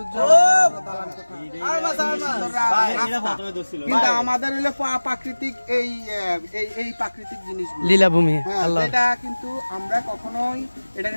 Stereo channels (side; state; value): both; inverted; correlation -1.00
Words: কিন্তু আমাদের হইলো প্রাকৃতিক এই প্রাকৃতিক জিনিসগুলো, লীলাভূমি। আল্লাহ, এটা কিন্তু আমরা কখনোই